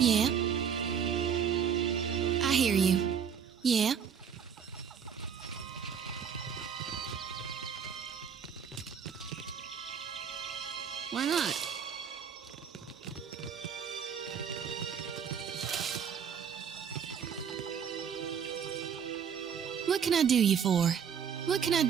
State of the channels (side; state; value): left; quieter; 7.4 dB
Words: I hear you. Yeah. Why not? What can I do you for? What can I